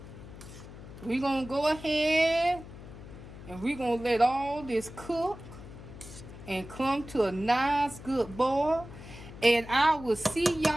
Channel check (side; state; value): left; noise; hum, 15 dB below the sound